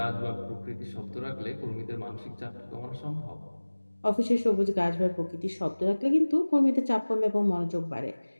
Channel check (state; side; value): inverted; both; correlation -1.00